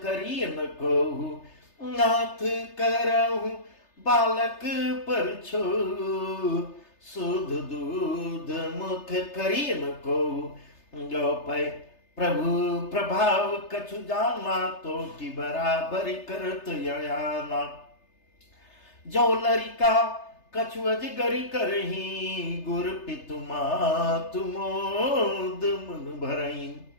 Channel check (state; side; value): late; right; 3.3 ms